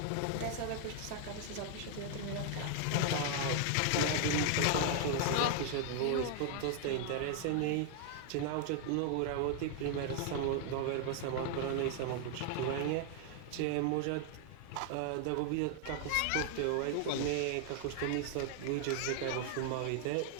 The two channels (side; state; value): both; different; correlation 0.00